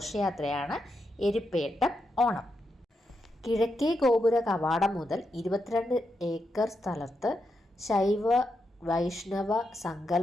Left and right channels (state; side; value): normal; both; correlation 0.84